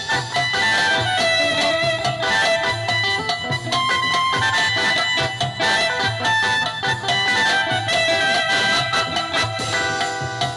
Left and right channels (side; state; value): both; identical; correlation 1.00